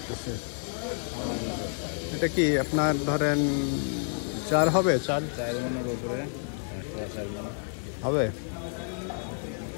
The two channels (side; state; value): right; silent; 58 dB below the other